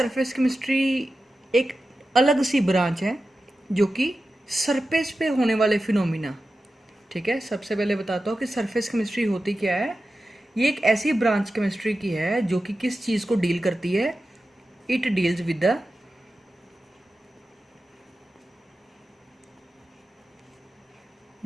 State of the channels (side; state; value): both; normal; correlation 0.93